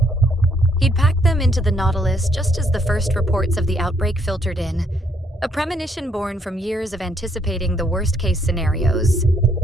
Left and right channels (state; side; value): normal; both; correlation 0.71